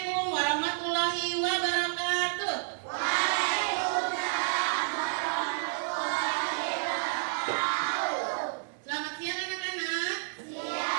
warahmatullahi wabarakatuh. Waalaikumsalam warahmatullahi wabarakatuh. Selamat siang anak-anak.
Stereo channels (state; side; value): silent; left; digital silence